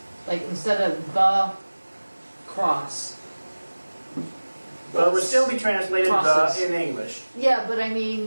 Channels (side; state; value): both; inverted; correlation -1.00